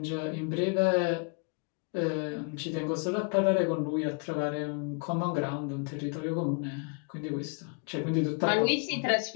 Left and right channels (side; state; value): right; quieter; 38.4 dB